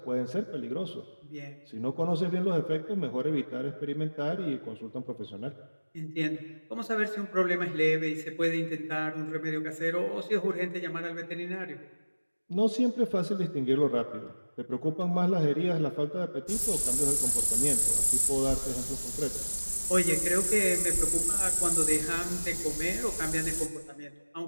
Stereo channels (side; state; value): both; inverted; correlation -1.00